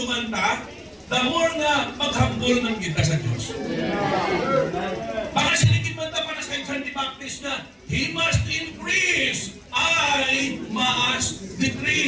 ta, the more nga maghambol ng kita sa Diyos. Baka siligid man ta para sa John the Baptist na, He must increase, I must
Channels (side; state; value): both; identical; correlation 1.00